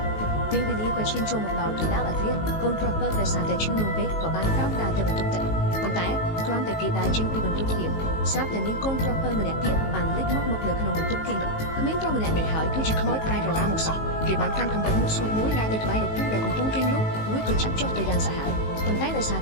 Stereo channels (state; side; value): late; right; 19 ms